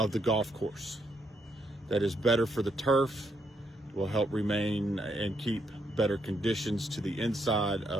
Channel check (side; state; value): both; normal; correlation 0.76